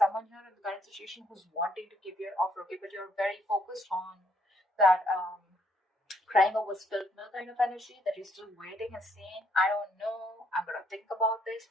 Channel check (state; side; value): normal; both; correlation 0.69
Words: here in the current situation who's wanting to give you an offer, okay? But you're very focused on that crying over spilled milk kind of energy, that you're still waiting and saying, I don't know, I'm going to think about this